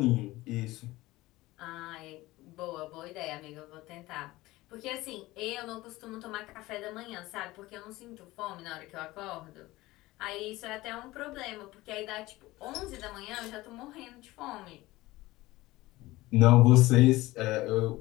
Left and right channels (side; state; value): right; quieter; 18.9 dB